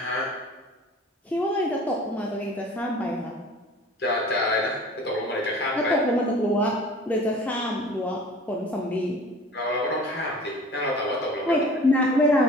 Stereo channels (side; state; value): both; normal; correlation 0.44